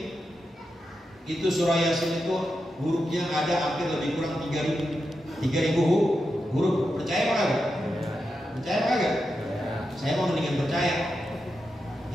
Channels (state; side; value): normal; both; correlation 0.88